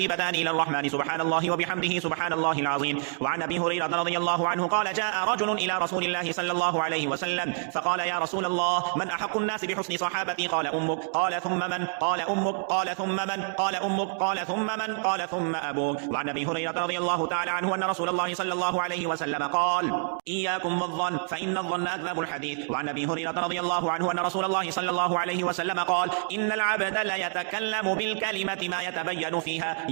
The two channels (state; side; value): silent; left; 58 dB below the other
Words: إلى الرحمن سبحان الله وبحمده سبحان الله العظيم. وعن أبي هريرة رضي الله عنه قال: جاء رجل إلى رسول الله صلى الله عليه وسلم فقال: يا رسول الله، من أحق الناس بحسن صحابتي؟ قال: أمك. قال: ثم من؟ قال: أمك. قال: ثم من؟ قال: أمك. قال: ثم من؟ قال: ثم أبوك. وعن أبي هريرة رضي الله تعالى عنه أن رسول الله صلى الله عليه وسلم قال: إياكم والظن فإن الظن أكذب الحديث. وعن أبي هريرة رضي الله عنه أن رسول الله صلى الله عليه وسلم قال: إن العبد ليتكلم بالكلمة ما يتبين فيها